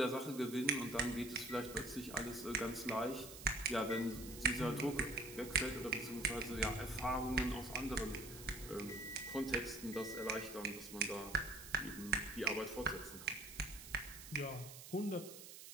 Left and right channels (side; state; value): right; noise; hiss, 13 dB below the sound